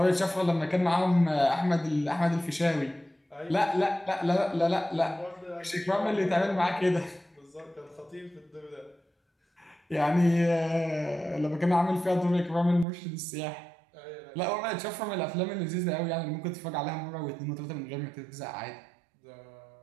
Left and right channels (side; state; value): left; drops out; at 12.9 s